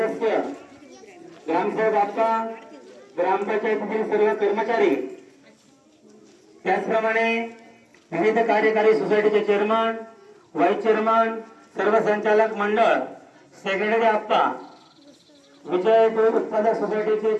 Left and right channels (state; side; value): identical; both; correlation 1.00